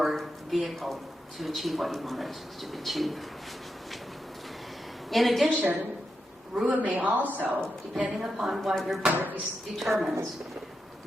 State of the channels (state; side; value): normal; both; correlation 0.86